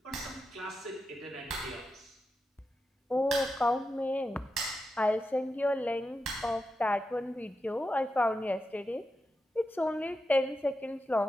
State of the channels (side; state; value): both; normal; correlation 0.89